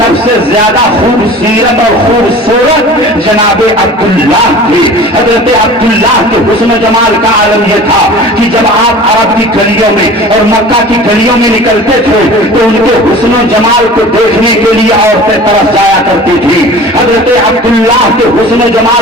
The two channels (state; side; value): normal; both; correlation 0.41